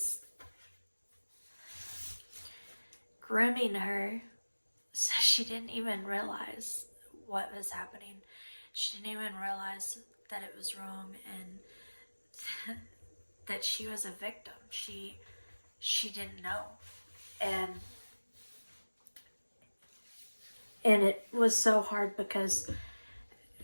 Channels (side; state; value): both; inverted; correlation -1.00